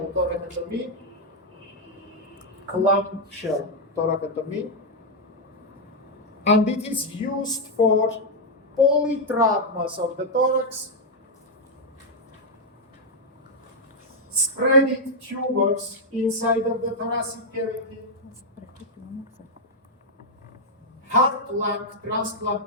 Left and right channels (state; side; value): normal; both; correlation -0.01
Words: thoracotomy. Clamshell thoracotomy. And it is used for polytraumas of the thorax, spreading tumors inside of the thoracic cavity, heart-lung